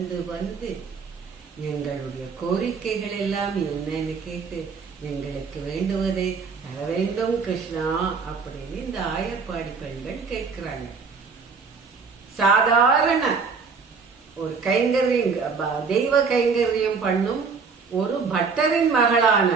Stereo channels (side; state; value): left; quieter; 5.2 dB